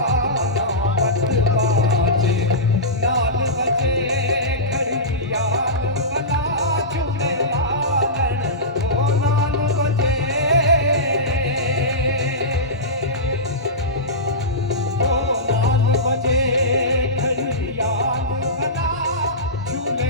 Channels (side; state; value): both; normal; correlation -0.17